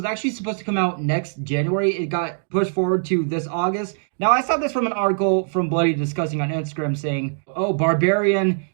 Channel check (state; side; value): silent; left; digital silence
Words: actually supposed to come out next January. It got pushed forward to this August. Now, I saw this from an article from Bloody Discussing on Instagram saying, oh, Barbarian